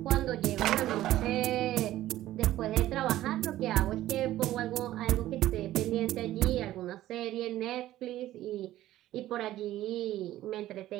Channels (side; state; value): left; quieter; 14.4 dB